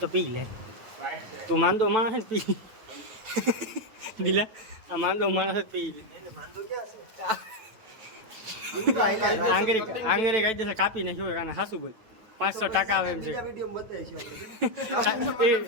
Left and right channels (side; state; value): left; late; 9.1 ms